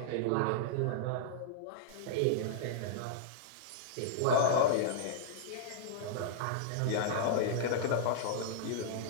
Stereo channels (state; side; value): different; both; correlation -0.02